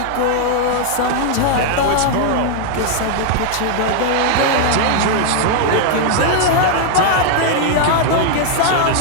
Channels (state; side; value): different; both; correlation 0.00